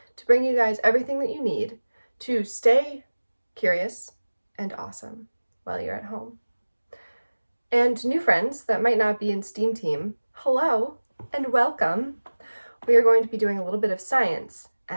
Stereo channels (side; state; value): both; inverted; correlation -1.00